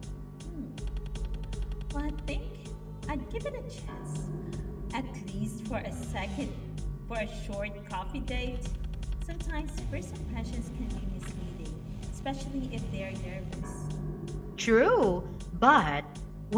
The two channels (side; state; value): both; identical; correlation 1.00